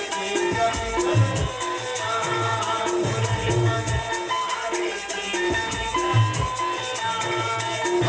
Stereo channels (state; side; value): identical; both; correlation 1.00